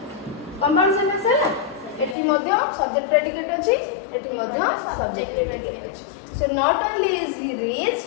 compound sentence है ना एठी मध्ये सब्जेक्ट प्रेडिकेट अछि एठी मध्ये सब्जेक्ट प्रेडिकेट अछि so not only is he rich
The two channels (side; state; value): right; drops out; at 2.1 s